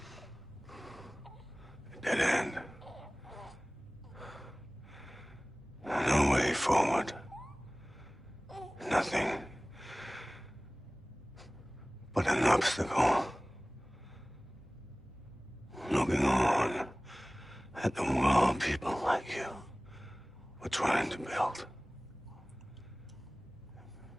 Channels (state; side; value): normal; both; correlation 0.98